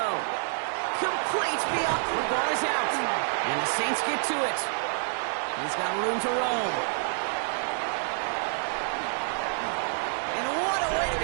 Complete beyond. The ball is out. And the Saints get to it. He's got room to roam. And what a way to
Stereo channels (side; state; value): left; silent; digital silence